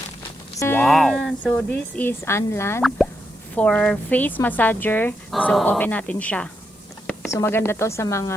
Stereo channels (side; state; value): both; normal; correlation 0.83